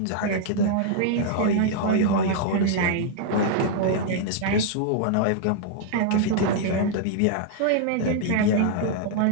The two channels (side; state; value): both; different; correlation -0.01